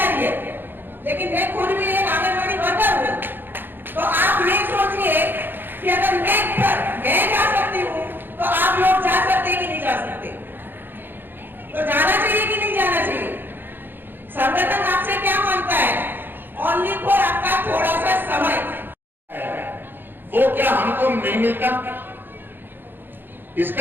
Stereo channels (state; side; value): late; left; 0.097 ms